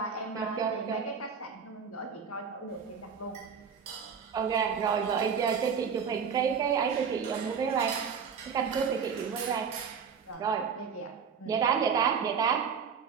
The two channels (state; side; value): quieter; left; 6.5 dB